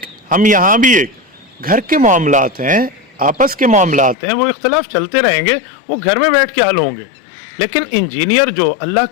ہم یہاں بھی ایک۔ گھر کے معاملات ہیں، آپس کے معاملات ہیں، وہ اختلاف چلتے رہیں گے، وہ گھر میں بیٹھ کے حل ہوں گے۔ لیکن انجینئر جو اللہ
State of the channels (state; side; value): drops out; right; at 4.2 s